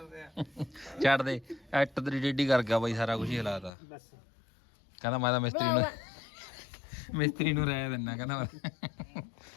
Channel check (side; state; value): right; drops out; at 3.7 s